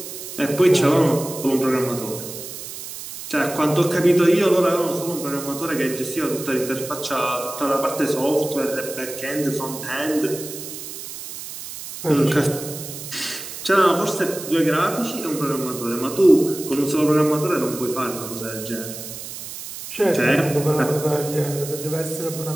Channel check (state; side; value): noise; right; hiss, 10 dB below the sound